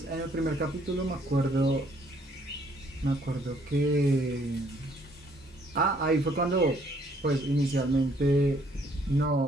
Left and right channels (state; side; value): normal; both; correlation 0.65